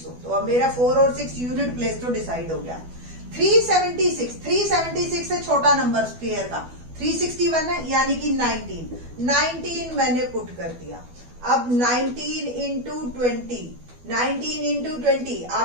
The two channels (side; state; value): left; late; 12 ms